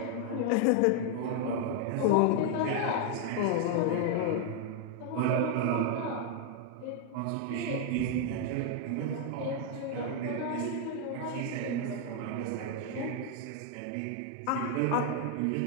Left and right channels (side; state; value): both; different; correlation 0.00